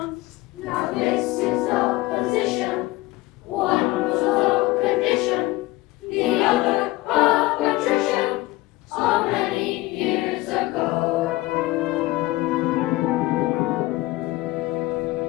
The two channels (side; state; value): right; quieter; 19.5 dB